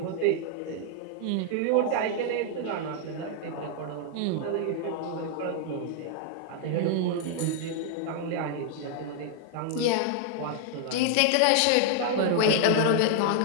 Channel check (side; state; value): both; different; correlation 0.00